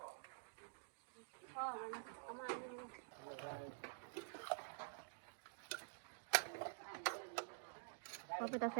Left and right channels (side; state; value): left; silent; digital silence